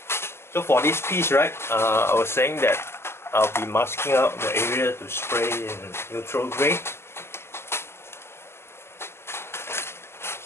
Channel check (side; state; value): right; late; 0.12 ms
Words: So for this piece, right, I was saying that I'll be masking out the area to spray in neutral grey.